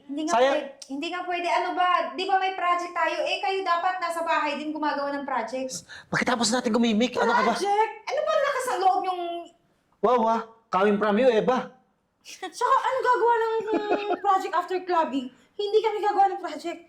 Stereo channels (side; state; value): both; identical; correlation 1.00